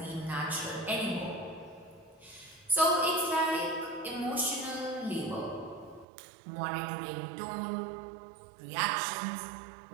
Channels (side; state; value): left; drops out; at 6.1 s